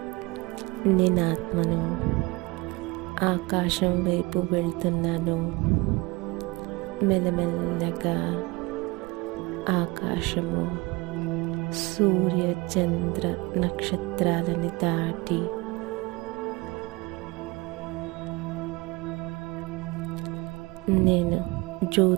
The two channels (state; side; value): quieter; left; 24.3 dB